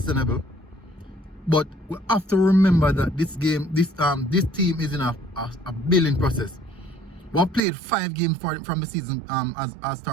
but we have to remember that this team is in a building process. We have played 5 games from the season as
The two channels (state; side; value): drops out; left; at 7.6 s